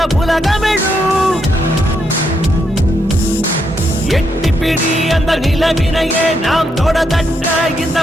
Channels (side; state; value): both; normal; correlation 0.79